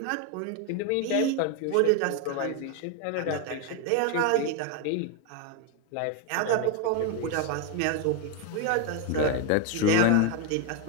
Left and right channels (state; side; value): different; both; correlation 0.01